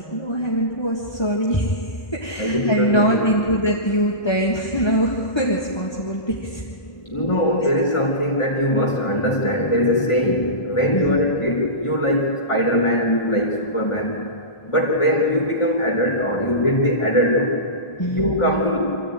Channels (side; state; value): right; late; 1.3 ms